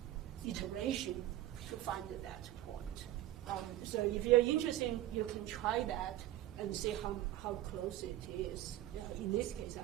iteration to find that point. So if you're interested, you can try that and see how close it is. In this case,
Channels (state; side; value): quieter; left; 14.2 dB